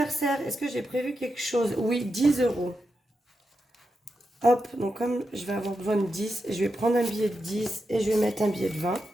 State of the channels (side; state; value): both; normal; correlation 0.87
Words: est-ce que j'ai prévu quelque chose? Oui, 10 €. Hop, donc comme je vais avoir besoin de 10, je vais prendre un billet de 10 et je vais mettre un billet de 20.